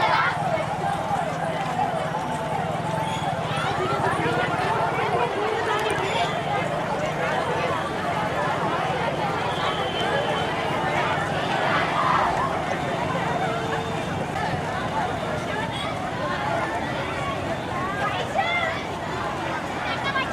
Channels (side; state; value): both; identical; correlation 1.00